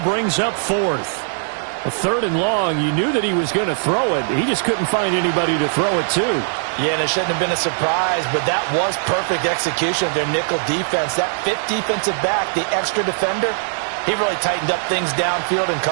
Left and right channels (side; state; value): left; silent; 66 dB below the other